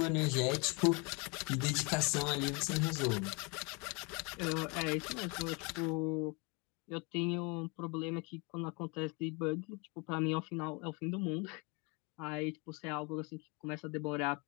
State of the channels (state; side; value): quieter; right; 30.3 dB